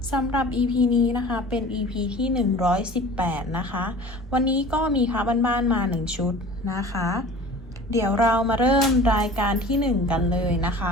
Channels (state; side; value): normal; both; correlation 0.42